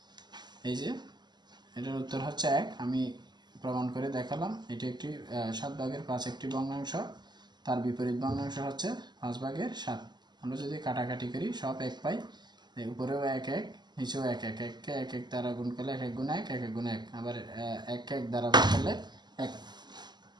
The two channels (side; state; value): left; late; 0.21 ms